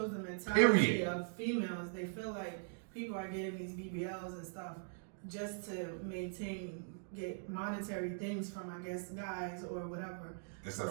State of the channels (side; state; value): left; silent; digital silence